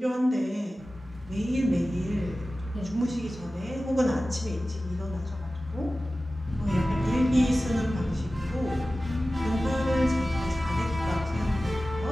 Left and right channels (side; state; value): both; normal; correlation 0.96